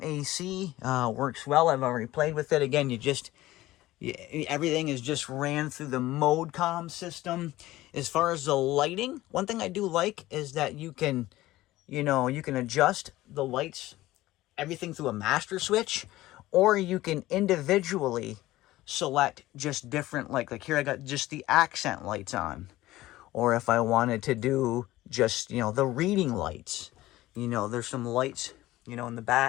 AC. Works well. I've already played with it. Again, everything is just ran through the ModeCom system. As far as the lighting, one thing I do like is that you can adjust the lights, everything through a master switch, or you can individually select just different, like here I got just the accent lights on. Or if I wanted to do just, you know, the reading lights, you know, there's some lights, you know, in the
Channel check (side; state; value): right; quieter; 16.8 dB